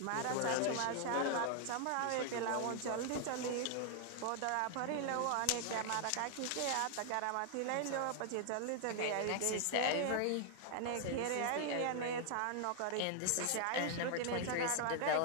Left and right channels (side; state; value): both; different; correlation 0.00